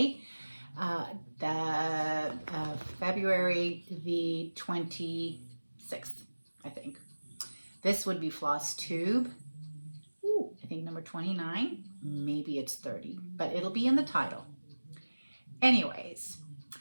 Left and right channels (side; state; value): both; inverted; correlation -1.00